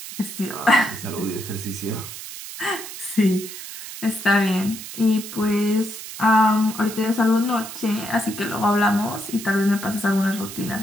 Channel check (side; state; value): right; noise; hiss, 11 dB below the sound